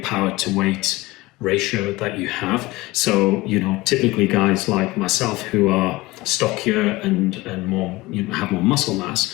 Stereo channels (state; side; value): quieter; right; 20.0 dB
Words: to weight ratio that you have. So typically guys like myself who are stockier and more have more muscle